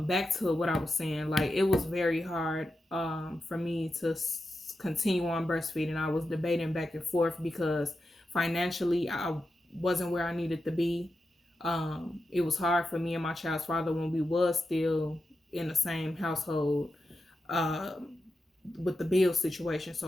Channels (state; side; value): normal; both; correlation 0.89